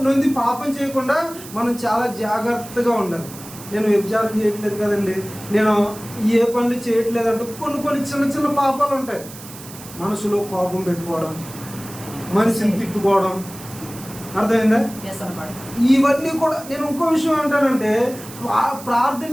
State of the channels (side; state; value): right; noise; hiss, 16 dB below the sound